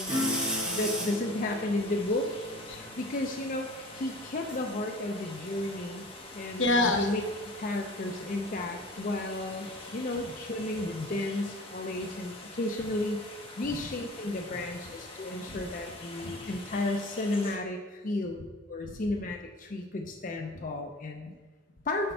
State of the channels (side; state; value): both; normal; correlation 0.40